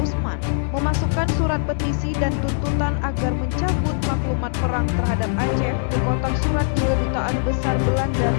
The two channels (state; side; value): silent; right; digital silence